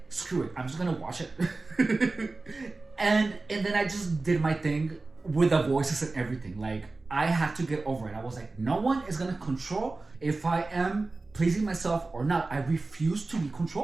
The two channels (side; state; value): left; quieter; 3.5 dB